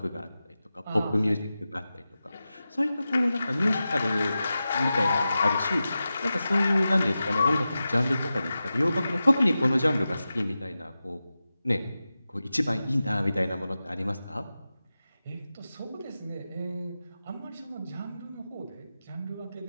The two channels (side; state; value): both; inverted; correlation -0.93